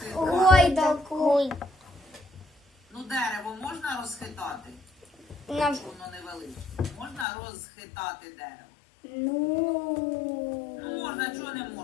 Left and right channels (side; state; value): right; drops out; at 7.2 s